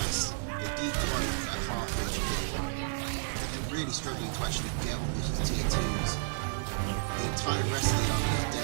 They decloak at half HP. They're really struggling to actually get on this tier 2s. The entire rest of the army is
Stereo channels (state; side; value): silent; left; 57 dB below the other